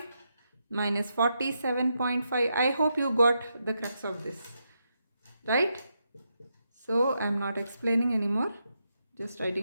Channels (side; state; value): both; inverted; correlation -0.83